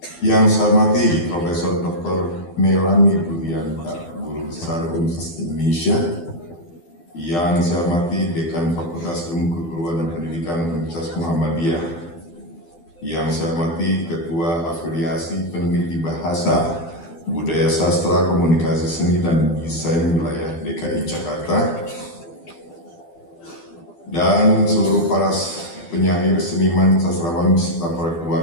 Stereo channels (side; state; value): right; late; 12 ms